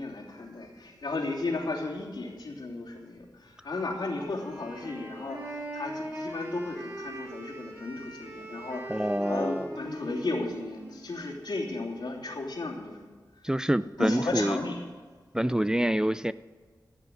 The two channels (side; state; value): both; normal; correlation 0.88